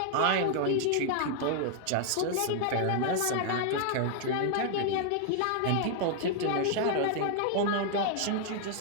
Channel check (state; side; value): different; both; correlation 0.00